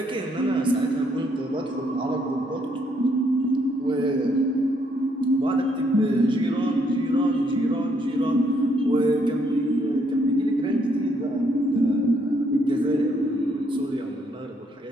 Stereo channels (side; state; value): both; normal; correlation 0.71